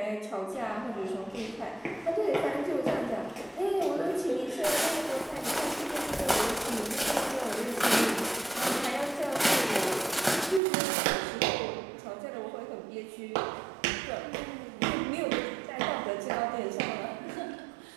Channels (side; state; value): left; drops out; at 10.6 s